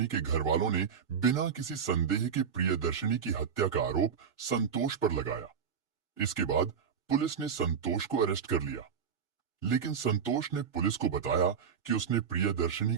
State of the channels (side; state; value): left; quieter; 7.1 dB